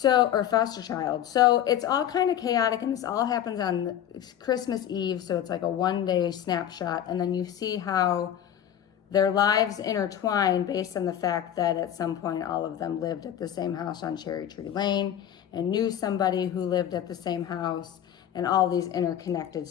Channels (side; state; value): right; quieter; 10.5 dB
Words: or foster child. So it's all kind of chaotic, and this all happens on Christmas Eve. So it's like a one-day snapshot, and then you see how their lives intertwine based on the fact that at some point all of them lived at the same house on Cherry Tree Lane and knew somebody who lived at the same house, and all these interconnected